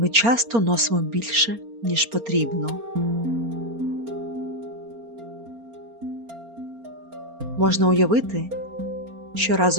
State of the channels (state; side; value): late; left; 4.3 ms